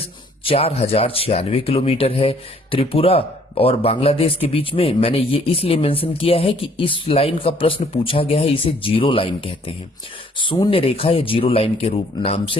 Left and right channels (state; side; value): normal; both; correlation 0.61